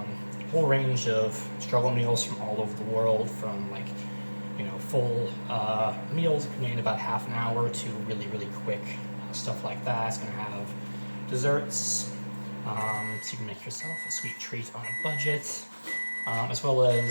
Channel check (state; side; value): inverted; both; correlation -1.00